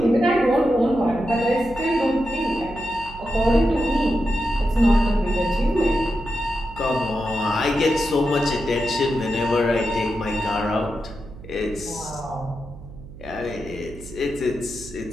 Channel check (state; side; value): noise; right; hum, 16 dB below the sound